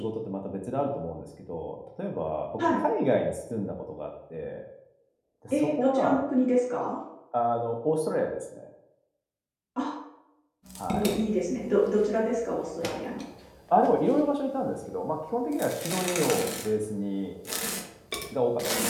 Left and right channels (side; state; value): both; identical; correlation 1.00